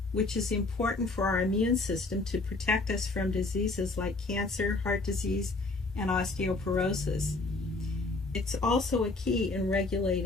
which is important for our immune system to protect us from diseases like cancer, heart disease, and osteoporosis? It's also a key in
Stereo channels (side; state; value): right; quieter; 3.3 dB